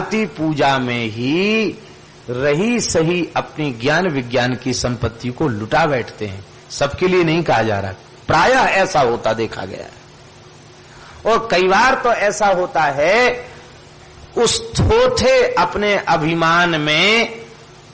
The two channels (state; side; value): identical; both; correlation 1.00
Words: पूजा में ही रही सही अपनी ज्ञान विज्ञान की संपत्ति को लुटा बैठते हैं। सबके लिए नहीं कहा जा रहा, प्रायः ऐसा होता देखा गया है। और कई बार तो ऐसा होता है उस थोथे अपने अभिमान में